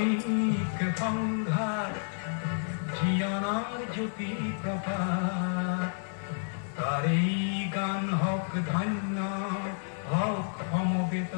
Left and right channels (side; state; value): right; silent; 58 dB below the other